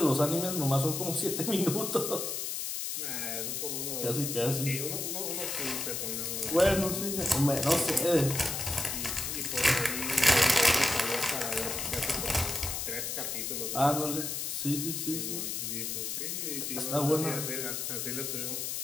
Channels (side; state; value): left; noise; hiss, 3 dB below the sound